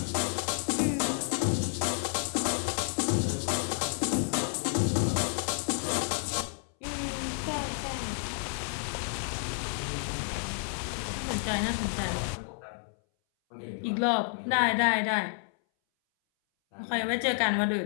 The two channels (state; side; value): silent; right; 58 dB below the other